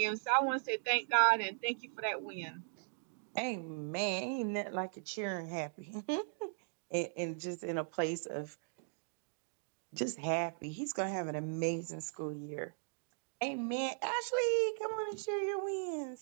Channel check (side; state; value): left; silent; digital silence